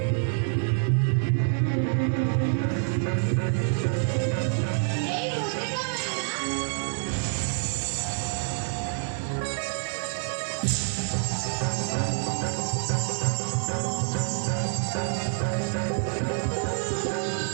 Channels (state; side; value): silent; left; 60 dB below the other